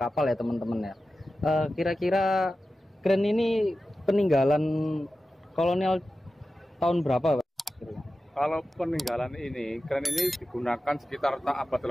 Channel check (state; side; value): normal; both; correlation 0.93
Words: ya, teman-teman ya. Kira-kira kren ini peninggalan kolonial tahun berapa, Pak? Kalau peninggalan ini, kren ini digunakan sekitar abad